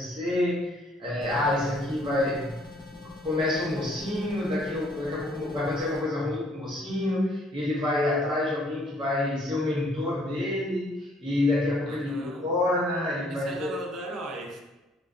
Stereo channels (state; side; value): normal; both; correlation 0.63